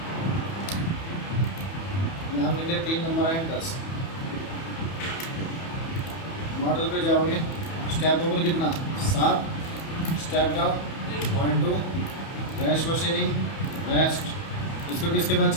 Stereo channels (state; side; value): late; right; 31 ms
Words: नाम लिख लिया, 3 नंबर है 10। मॉडल पे जाओगे, स्टेप ओवर कितना? 7, step down 0.2, rash machining, rest, इसको किसके बाद